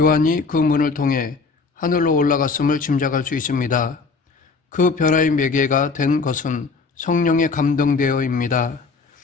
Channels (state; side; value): quieter; right; 4.5 dB